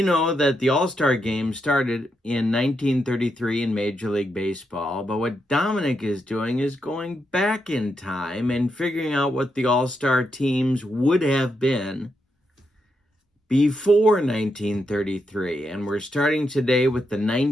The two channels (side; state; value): both; normal; correlation 0.82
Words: know that the All-Star Game started in 1933 in Major League Baseball, but what Dominic is doing is going back in time and figuring out what the All-Star teams would have been before 1933. And we're starting today with the